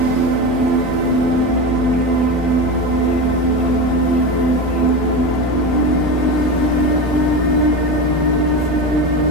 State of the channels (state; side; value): normal; both; correlation 0.22